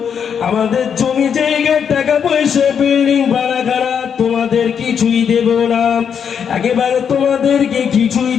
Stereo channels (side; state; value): right; quieter; 7.4 dB